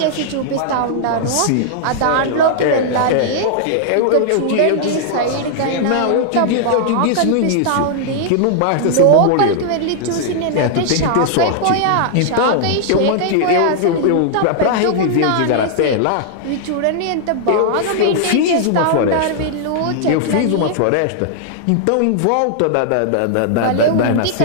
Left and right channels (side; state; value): both; different; correlation -0.01